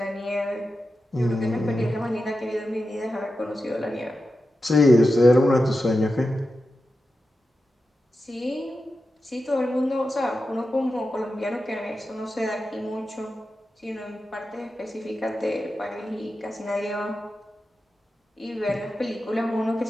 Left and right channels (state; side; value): normal; both; correlation 0.91